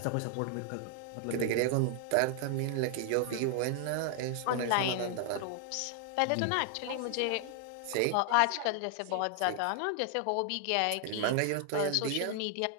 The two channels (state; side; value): different; both; correlation 0.00